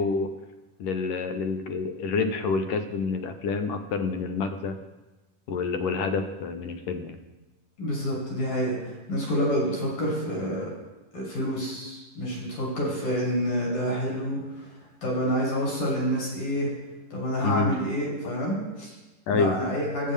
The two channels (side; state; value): right; late; 11 ms